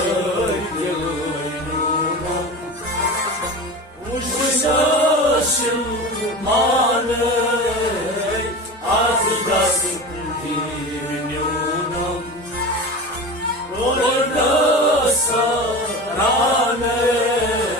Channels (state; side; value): normal; both; correlation 0.30